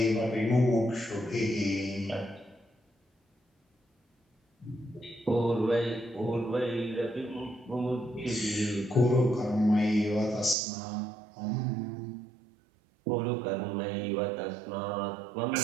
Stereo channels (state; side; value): drops out; left; at 10.6 s